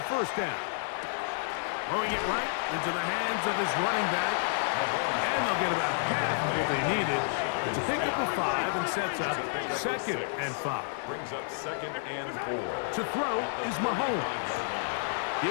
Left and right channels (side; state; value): right; silent; 58 dB below the other